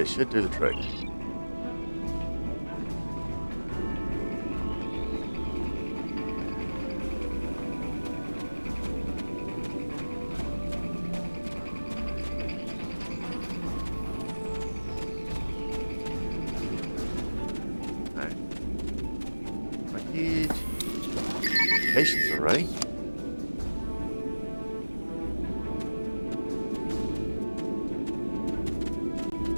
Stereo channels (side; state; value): both; inverted; correlation -1.00